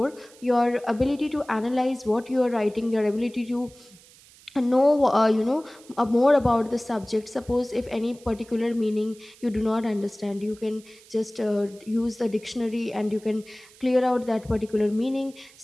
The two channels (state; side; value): noise; right; hiss, 25 dB below the sound